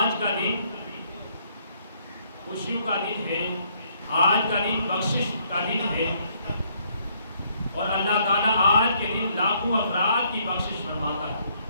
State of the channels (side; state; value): both; inverted; correlation -0.68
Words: کا دن خوشیوں کا دن ہے، آج کا دن بخشش کا دن ہے، اور اللہ تعالیٰ آج کے دن لاکھوں افراد کی بخشش فرماتا ہے۔